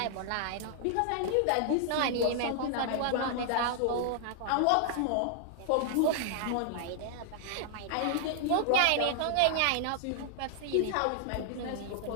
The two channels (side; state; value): both; different; correlation 0.00